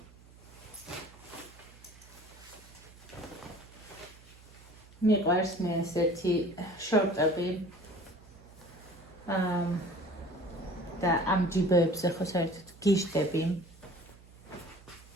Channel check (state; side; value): noise; right; hum, 22 dB below the sound